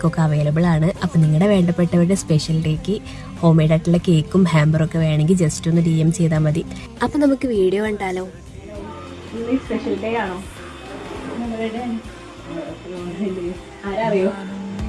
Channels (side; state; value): both; identical; correlation 1.00